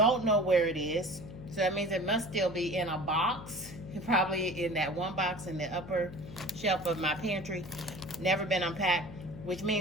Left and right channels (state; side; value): noise; left; hum, 13 dB below the sound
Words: know where it is. So that means it must still be in a box. Probably in that one box in the upper shelf of my pantry. Never been unpacked. Which